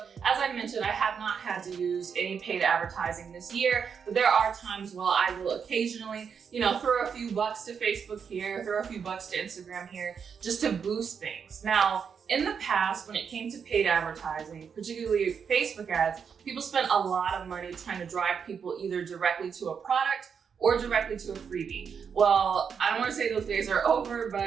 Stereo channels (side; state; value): left; quieter; 6.7 dB